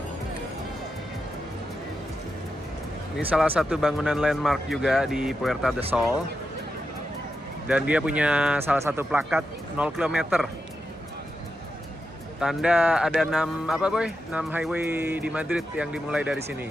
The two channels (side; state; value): both; normal; correlation 0.88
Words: Ini salah satu bangunan landmark juga di Puerta del Sol. Dan dia punya salah satu plakat 0 km. Tanda ada 6 highway di Madrid yang dimulai dari sini.